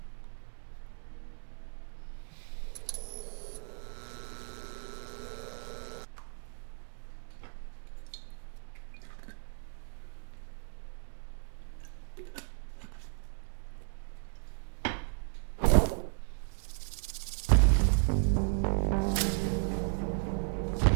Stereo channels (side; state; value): left; silent; 55 dB below the other